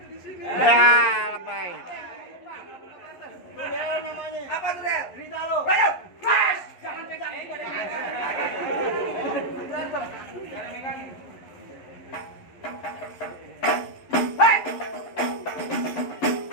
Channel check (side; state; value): right; late; 11 ms